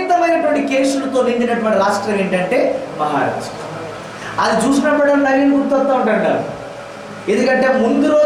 కేసులతో నిండినటువంటి రాష్ట్రం ఏంటంటే మహారాష్ట్ర. అది చూసినప్పుడు నవీన్ గుర్తొస్తూ ఉంటాడు. ఎందుకంటే ముందు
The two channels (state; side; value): identical; both; correlation 1.00